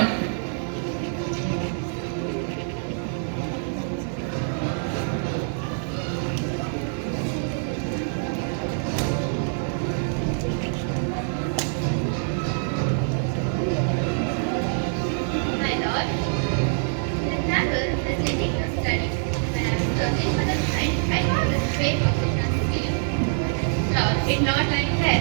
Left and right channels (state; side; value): silent; left; digital silence